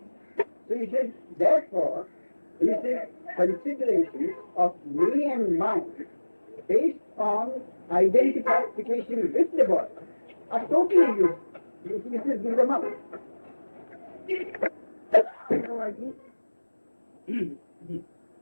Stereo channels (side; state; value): both; inverted; correlation -1.00